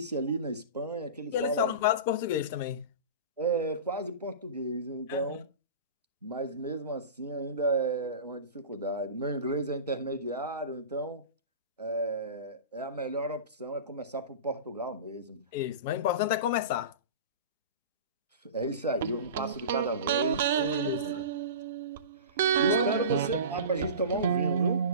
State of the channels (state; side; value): inverted; both; correlation -0.31